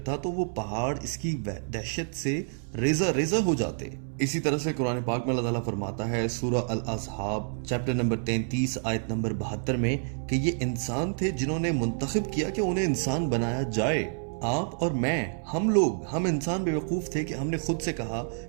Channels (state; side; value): silent; left; 59 dB below the other